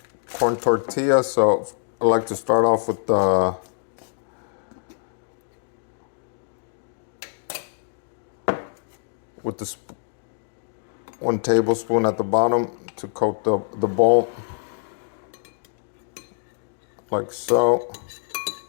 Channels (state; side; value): silent; right; digital silence